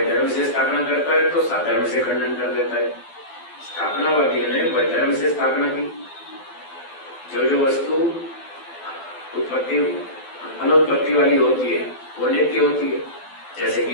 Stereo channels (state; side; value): late; right; 12 ms